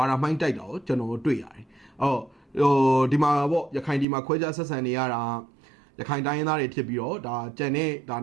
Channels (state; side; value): drops out; left; at 4.0 s